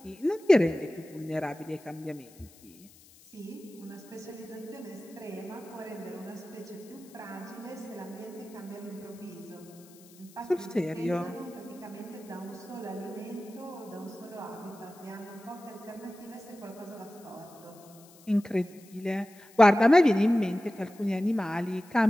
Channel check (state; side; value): noise; left; hiss, 24 dB below the sound